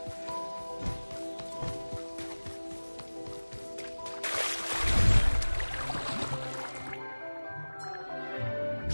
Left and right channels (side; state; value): both; inverted; correlation -1.00